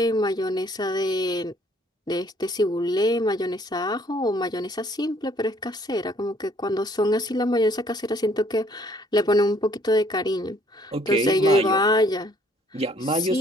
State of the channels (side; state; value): both; normal; correlation 0.61